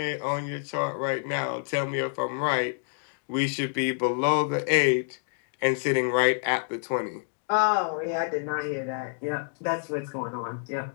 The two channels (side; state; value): right; silent; digital silence